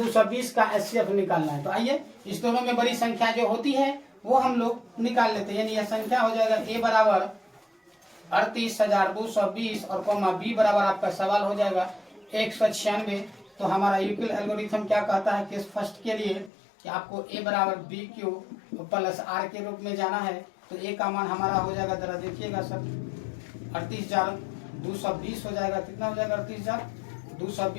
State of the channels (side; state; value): right; drops out; at 16.5 s